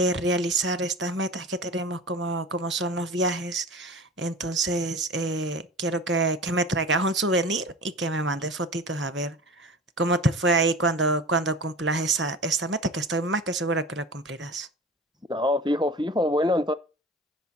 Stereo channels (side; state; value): both; normal; correlation 0.36